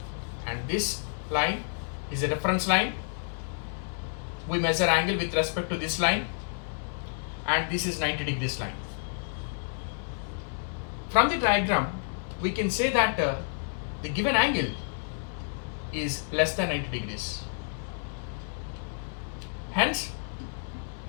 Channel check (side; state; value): right; silent; digital silence